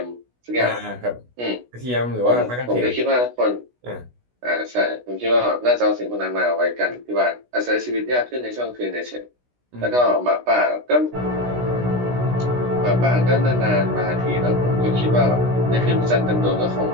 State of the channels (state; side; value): late; left; 16 ms